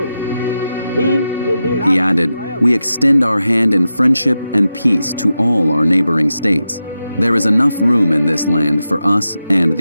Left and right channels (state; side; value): inverted; both; correlation -0.90